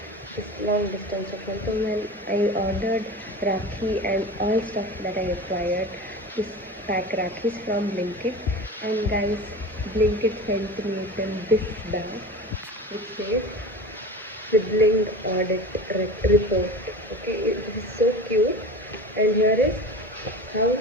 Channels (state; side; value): normal; both; correlation 0.33